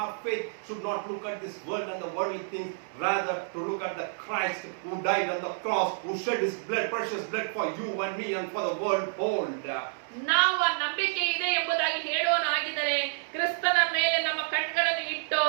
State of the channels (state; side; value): silent; left; digital silence